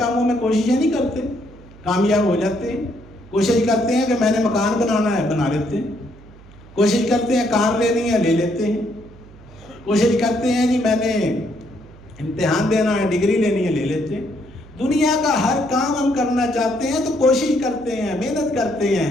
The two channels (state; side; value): noise; right; hum, 22 dB below the sound